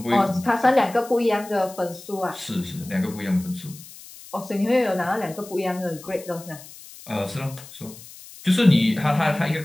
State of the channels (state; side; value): noise; left; hiss, 18 dB below the sound